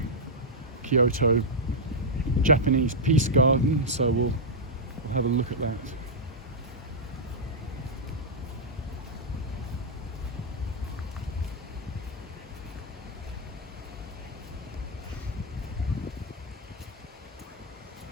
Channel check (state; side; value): normal; both; correlation -0.06